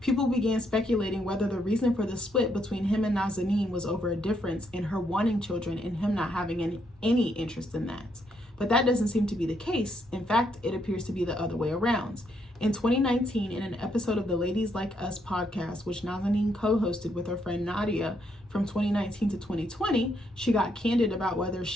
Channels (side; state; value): both; normal; correlation 0.75